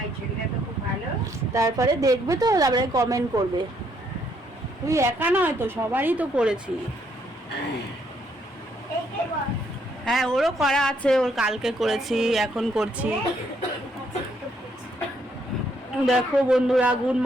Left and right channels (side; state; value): both; normal; correlation 0.71